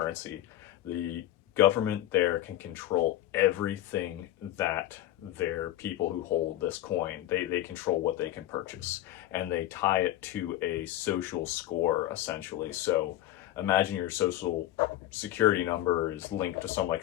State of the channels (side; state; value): right; quieter; 14.1 dB